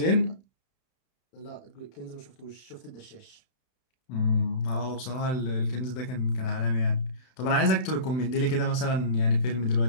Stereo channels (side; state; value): right; late; 32 ms